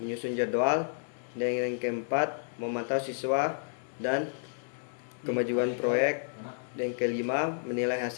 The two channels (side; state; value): right; silent; digital silence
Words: menyusun jadwal. Dan yang keempat, memantau siswa dan kemajuan proyek. Dan yang kelima, menilai